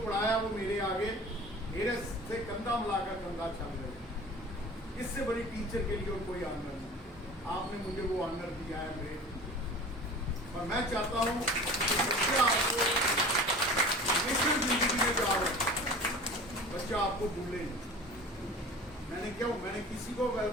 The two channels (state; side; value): normal; both; correlation 0.39